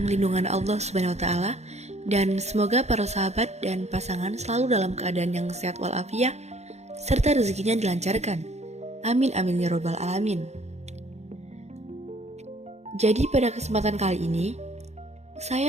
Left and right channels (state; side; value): late; left; 0.32 ms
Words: lindungan Allah Subhanahu wa taala dan semoga para sahabat dan pasangan selalu dalam keadaan yang sehat walafiat serta rezekinya dilancarkan. Amin amin ya robbal alamin. Jadi pada kesempatan kali ini,